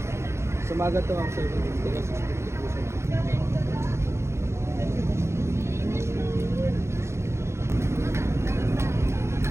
Sumaga to ma'am.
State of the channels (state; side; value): late; left; 0.13 ms